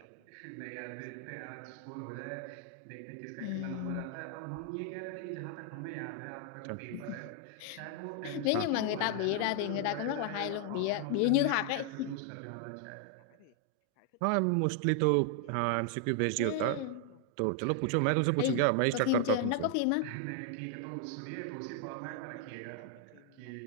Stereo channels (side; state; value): both; different; correlation 0.00